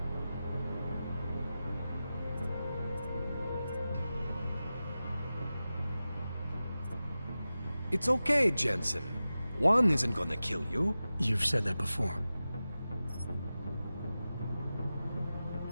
It's okay, Jensen. One isn't gonna kill you. You've said that before.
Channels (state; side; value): inverted; both; correlation -0.94